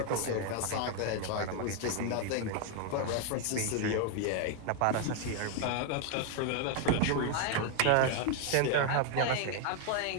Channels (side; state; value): both; different; correlation 0.00